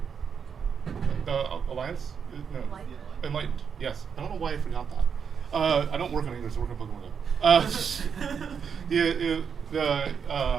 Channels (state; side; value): quieter; left; 6.7 dB